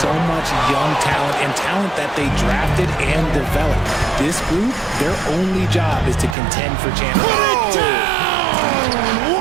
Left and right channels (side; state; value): left; drops out; at 6.4 s